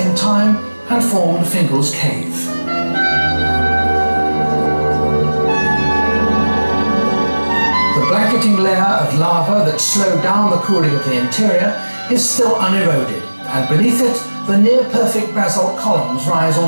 time and formed Fingal's Cave. The blanketing layer of lava that slowed down the cooling of the interior is still uneroded, and beneath it, the near-perfect basalt columns rise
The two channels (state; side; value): inverted; both; correlation -1.00